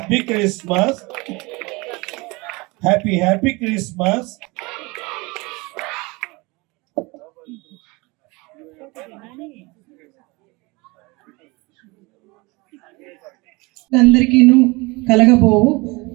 Christmas, happy happy Christmas. అందరికీను కలగబోవు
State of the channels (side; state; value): left; quieter; 25.1 dB